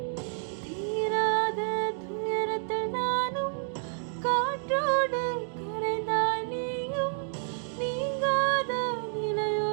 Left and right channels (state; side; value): silent; left; 58 dB below the other